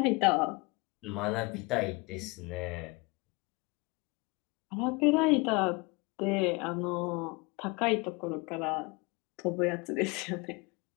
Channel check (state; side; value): quieter; right; 26.7 dB